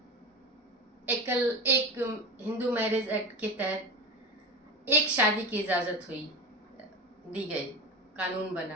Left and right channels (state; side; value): normal; both; correlation 0.25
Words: एक हिंदू मैरिज एक्ट के तहत एक शादी की इजाजत दी गई, कानून